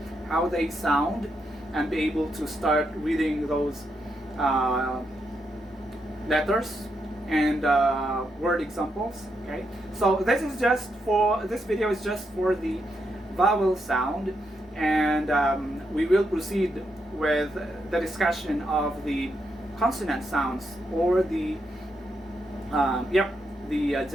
how they sound and be able to start reading those letters and word examples. Okay, so this video is just for the vowel sound, and we will proceed with the discussion of the consonant sounds, or the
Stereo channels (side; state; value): both; normal; correlation 0.81